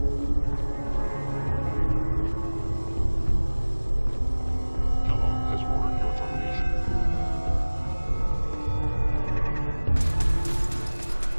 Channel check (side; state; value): both; inverted; correlation -1.00